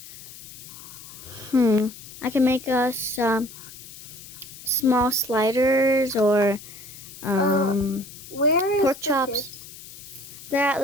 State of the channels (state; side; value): noise; left; hiss, 16 dB below the sound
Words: I can make us some small sliders or where is pork the chops. kids?